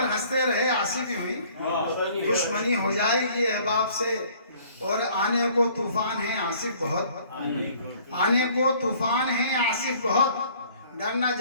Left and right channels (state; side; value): inverted; both; correlation -0.56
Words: हंसते रहे आसिफ यूं ही, दुश्मनी हो जाएगी अहबाब से। और आने को तूफान है आसिफ बहुत, आने को तूफान है आसिफ बहुत, डर न